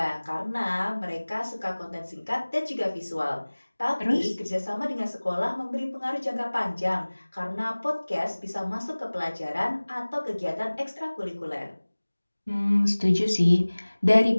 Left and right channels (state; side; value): inverted; both; correlation -1.00